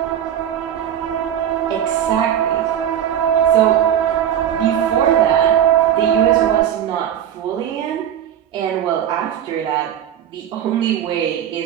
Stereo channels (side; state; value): left; quieter; 10.1 dB